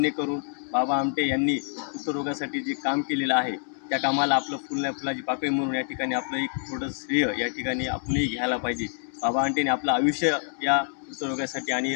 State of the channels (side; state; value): right; silent; digital silence